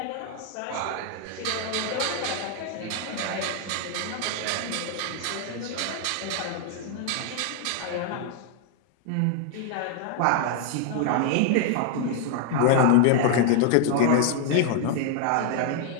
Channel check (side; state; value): both; different; correlation 0.00